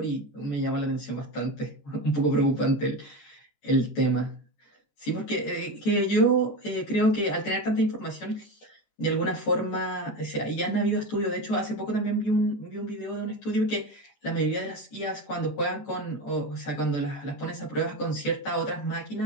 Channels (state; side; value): late; right; 14 ms